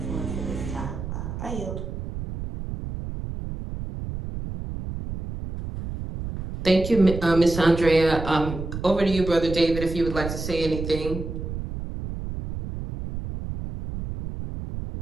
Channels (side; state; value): right; noise; rumble, 7 dB below the sound